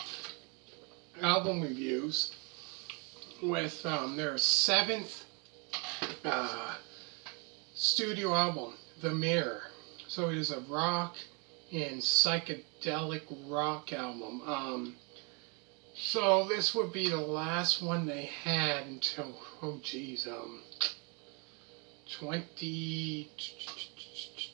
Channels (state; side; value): quieter; left; 33.2 dB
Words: album reviews with their seventh uh, studio album, The Mirror. So it is a rock and psychedelic rock album. So this would be the last one they had until, 20,